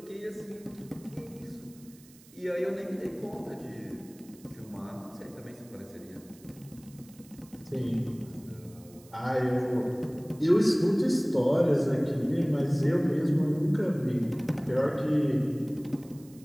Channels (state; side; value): noise; right; hiss, 25 dB below the sound